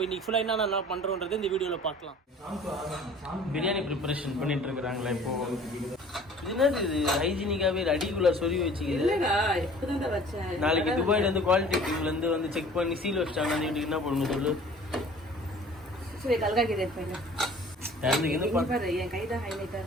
இன்னைக்கு ஃபுல்லாக என்ன பண்ணுறோன்றது இந்த வீடியோவில் பார்க்கலாம். பிரியாணி ப்ரிப்பரேஷன் பண்ணிட்டு இருக்கிறாங்களா இப்போ? என்னது இது ஹைஜீனிக்காகவே அடிக்குள்ள சொல்லி வச்சுக்கிது. நாளைக்கு துபாயிலேருந்து குவாலிட்டி டீம்லேருந்து வந்து செக் பண்ணி சீல் வச்சிட்டாங்க. என்ன பண்ணணும் சொல்லு.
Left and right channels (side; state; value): both; normal; correlation 0.48